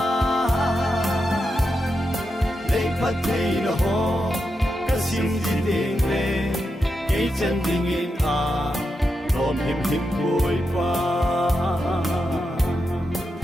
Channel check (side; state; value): both; normal; correlation 0.87